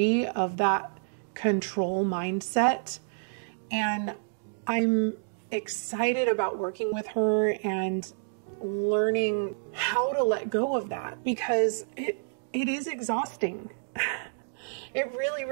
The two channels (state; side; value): silent; left; digital silence